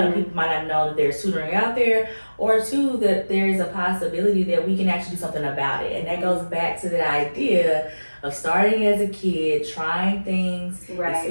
people might not know that there's tutoring out there, or two, that there's a possibility that we can actually do something about it. And that goes back to that idea of starting as a kid, trying things,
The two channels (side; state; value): both; inverted; correlation -1.00